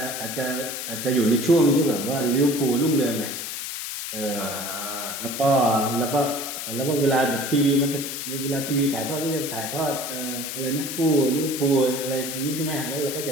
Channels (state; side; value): noise; left; hiss, 6 dB below the sound